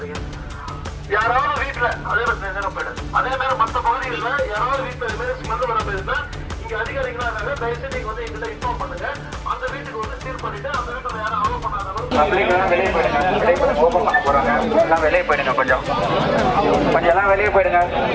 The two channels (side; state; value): both; identical; correlation 1.00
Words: யாராவது வீட்டுல அதே மாதிரி நேரம் போயிடு. அதே மாதிரி மற்ற பகுதிகளில் யாராவது வீட்டுல இது மாதிரி ஸ்மெல் வர போயிருந்தா இங்க அதிகாரிகளா இருக்காங்க. தயவுசெய்து நீங்க வந்து எங்கிட்ட இன்ஃபார்ம் பண்ணுங்க. அந்த வீட்டுக்கு வந்து சீர் பண்ணிட்டு அந்த வீட்டுல யாரும் அலோவ் பண்ணாதவங்க வெளியே போயிடுங்க. ஓபன் பண்ண போறாங்க. எல்லாம் வெளியே போயிடுங்க. கொஞ்சம் எல்லாம் வெளியே போயிடுங்க.